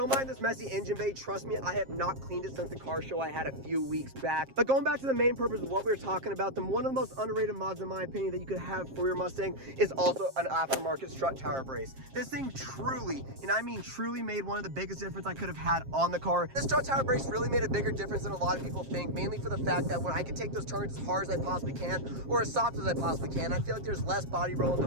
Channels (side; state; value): left; late; 7.5 ms